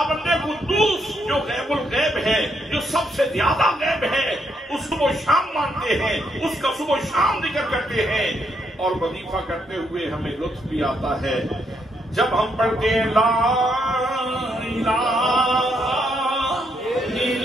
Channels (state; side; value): normal; both; correlation 0.76